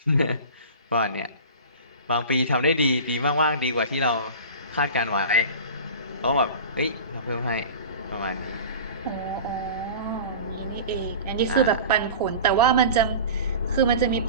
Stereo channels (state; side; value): inverted; both; correlation -0.35